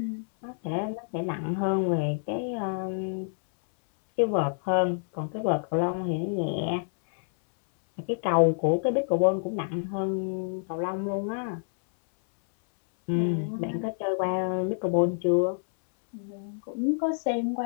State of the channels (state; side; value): silent; right; 60 dB below the other